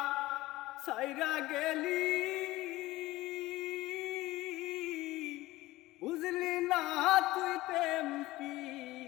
সাইরা গেলি বুঝলি না তুই প্রেম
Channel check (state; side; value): quieter; right; 18.1 dB